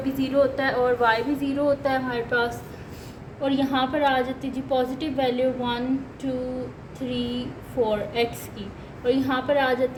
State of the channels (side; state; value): both; identical; correlation 1.00